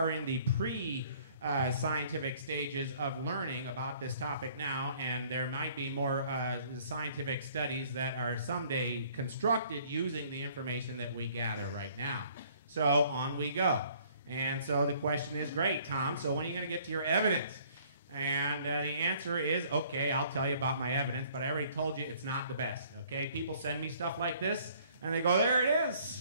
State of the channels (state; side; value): inverted; both; correlation -0.58